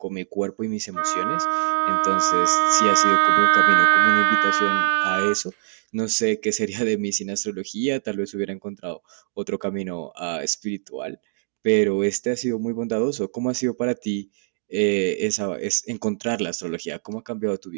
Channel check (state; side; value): silent; left; digital silence